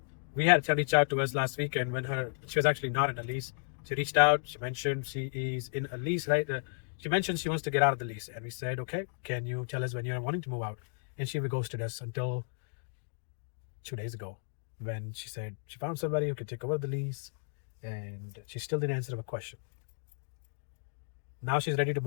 We had a reach out to us last weekend when she was actually not in a lease. She reached out, she mentioned she is in a lease, right? She mentioned she wants to get out of the lease. And we said, okay, can you tell us when you're wanting to move out? And she ghosted us until 2 days ago when she said she found somebody who could take over the lease, and she still didn't answer a question. Now she's ready to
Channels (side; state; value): right; silent; digital silence